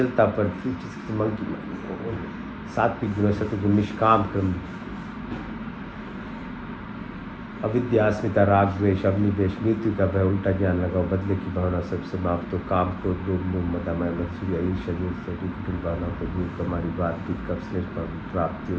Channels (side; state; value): both; identical; correlation 1.00